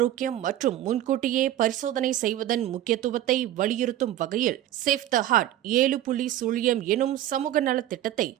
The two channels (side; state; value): left; quieter; 12.9 dB